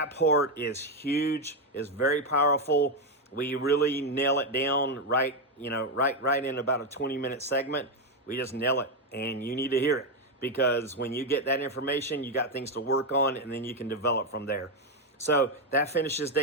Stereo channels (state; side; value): normal; both; correlation 0.06